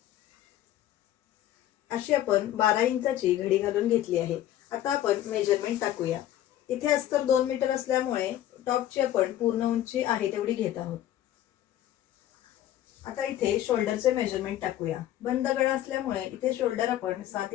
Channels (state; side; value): quieter; right; 12.6 dB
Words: अशी आपण 12 इंचाची घडी घालून घेतली आहे। आता आपण मेजरमेंट टाकूया। इथे अस्तर 2 मीटर असल्यामुळे टॉपची आपण पूर्ण उंची आहे तेवढी घेत आहोत। आता इथे शोल्डरचे मेजरमेंट टाकूया। बंद गळा असल्यामुळे इथे शोल्डर आपण 7